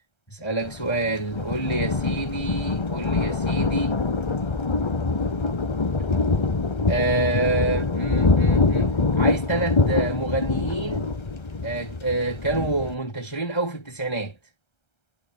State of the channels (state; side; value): late; right; 1.3 ms